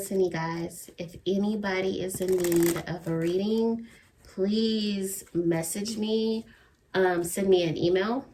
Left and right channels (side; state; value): both; identical; correlation 1.00